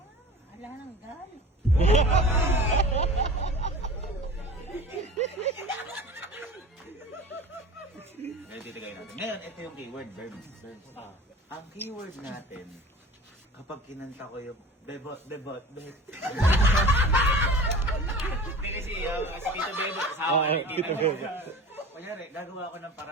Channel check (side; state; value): both; normal; correlation 0.39